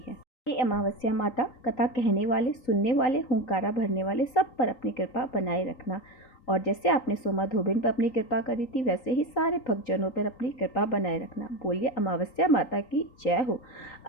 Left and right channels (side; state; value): right; late; 3.9 ms